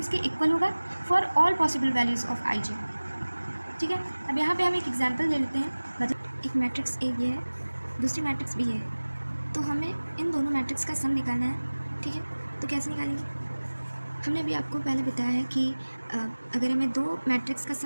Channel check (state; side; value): inverted; both; correlation -1.00